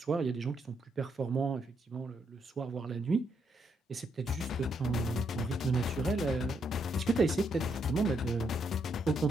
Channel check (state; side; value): normal; both; correlation 0.76